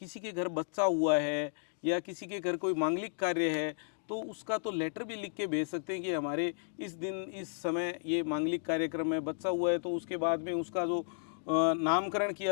किसी के घर बच्चा हुआ है या किसी के घर कोई मांगलिक कार्य है तो उसका तो लेटर भी लिख के भेज सकते हैं कि हमारे इस दिन इस समय ये मांगलिक कार्यक्रम में बच्चा हुआ है, तो उसके बाद में उसका जो नामकरण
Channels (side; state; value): right; silent; digital silence